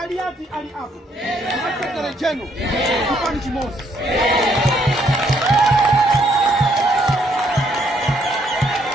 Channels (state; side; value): normal; both; correlation 0.70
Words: ali apo. Sekretary General chipani chimosi.